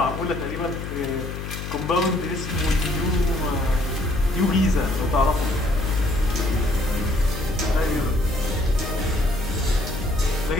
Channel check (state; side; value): noise; left; hum, 7 dB below the sound